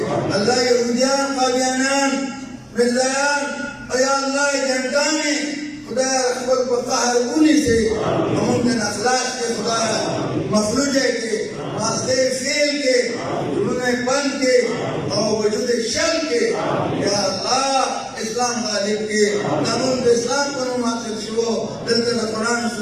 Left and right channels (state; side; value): identical; both; correlation 1.00